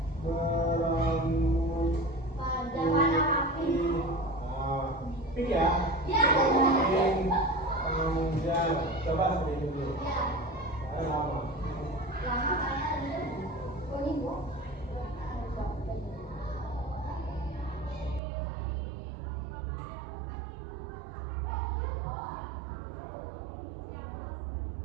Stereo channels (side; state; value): left; drops out; at 18.2 s